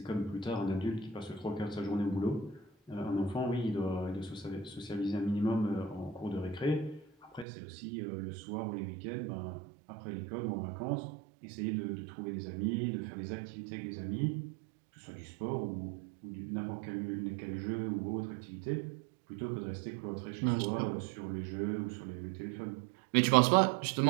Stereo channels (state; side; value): drops out; left; at 7.5 s